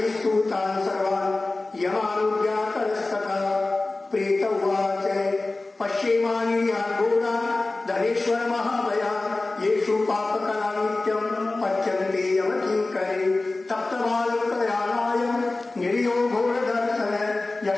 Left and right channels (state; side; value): quieter; right; 3.2 dB